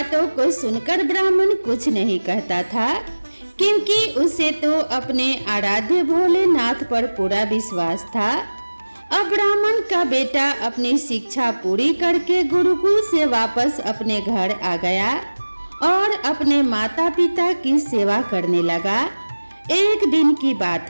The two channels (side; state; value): both; inverted; correlation -1.00